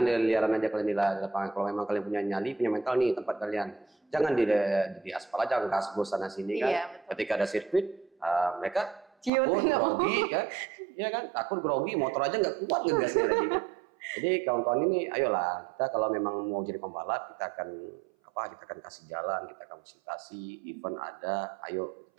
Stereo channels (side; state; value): left; drops out; at 9.3 s